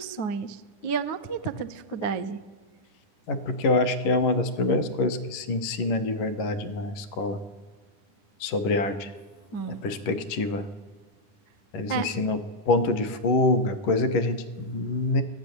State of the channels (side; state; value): right; late; 11 ms